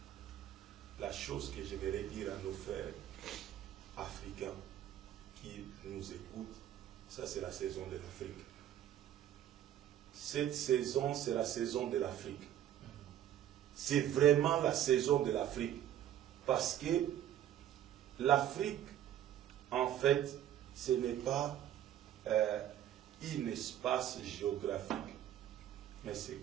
La chose que j'aimerais dire à nos frères africains qui nous écoutent, ça c'est la saison de l'Afrique. Cette saison, c'est la saison de l'Afrique. C'est vraiment la saison de l'Afrique. Parce que l'Afrique, en fait, ce n'est pas un espace géographique, mais c'est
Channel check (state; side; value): quieter; left; 11.3 dB